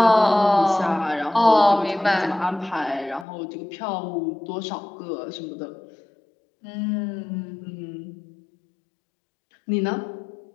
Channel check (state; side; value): drops out; right; at 3.2 s